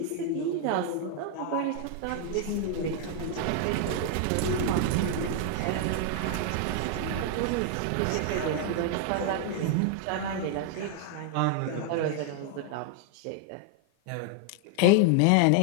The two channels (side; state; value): both; different; correlation 0.00